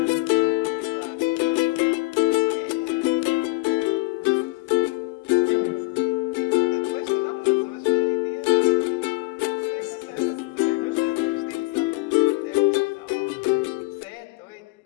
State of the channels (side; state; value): right; quieter; 23.4 dB